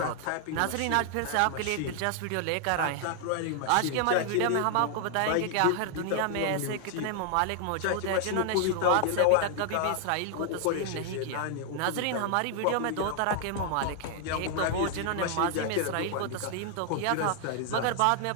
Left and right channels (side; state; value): both; different; correlation 0.00